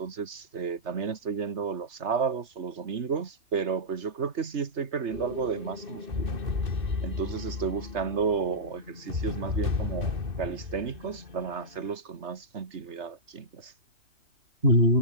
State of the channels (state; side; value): late; left; 3.3 ms